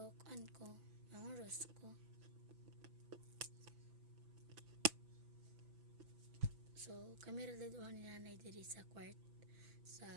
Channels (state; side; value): late; left; 6.0 ms